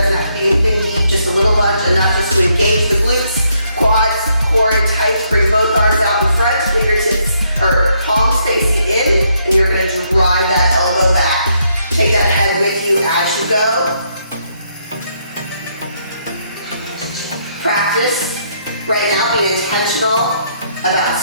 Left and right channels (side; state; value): both; inverted; correlation -0.74